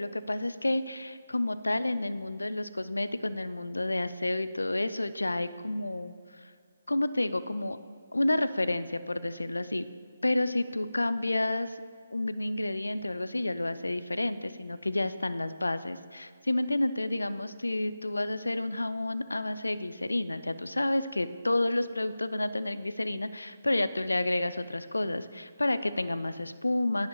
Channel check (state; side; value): inverted; both; correlation -0.97